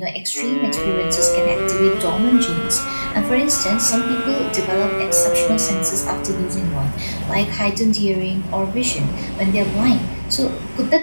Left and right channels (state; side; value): inverted; both; correlation -1.00